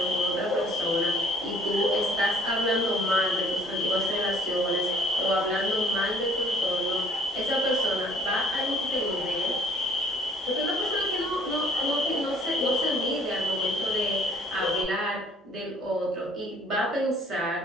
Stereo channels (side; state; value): both; normal; correlation 0.57